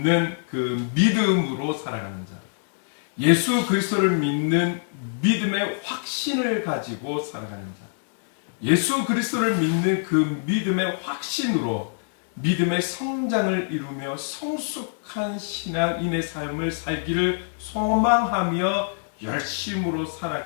그 믿음으로 살아가는 자, 예수 그리스도를 믿는 믿음의 확신을 가지고 살아가는 자, 예수 그리스도를 믿는 그 믿음의 확신으로 믿음의 성장을 이루며 성숙한 신앙인의 삶을 살기를 소망하며 열심으로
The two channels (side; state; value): right; silent; digital silence